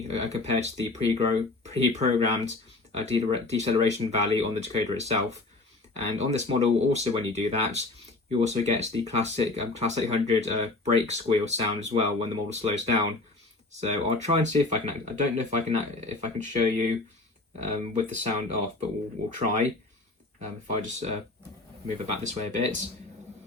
compared to the pre-programmed deceleration value on the decoder itself. And on this model, also when you do that, you also get the classic Class 800 brake squeal sound as well when the model slows down. So I'll try and see if I can. I don't know if I can show you with the sound off, but we'll try. If I just move it back this way a bit,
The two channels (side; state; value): right; quieter; 3.2 dB